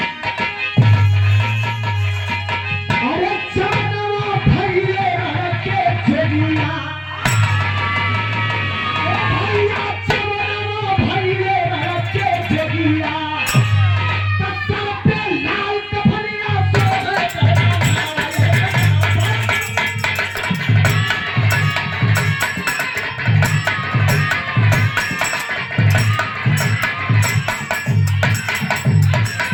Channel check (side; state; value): both; identical; correlation 1.00